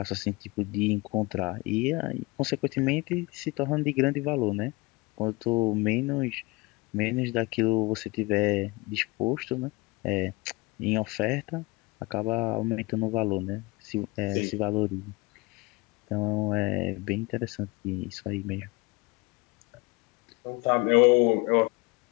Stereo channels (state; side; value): quieter; right; 24.4 dB